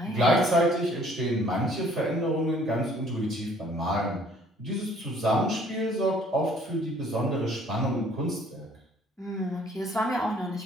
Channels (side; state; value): both; normal; correlation 0.58